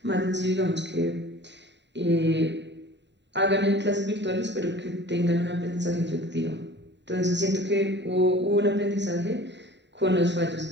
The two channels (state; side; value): late; left; 0.52 ms